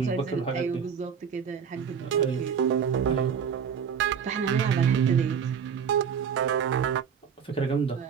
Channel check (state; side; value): quieter; left; 7.2 dB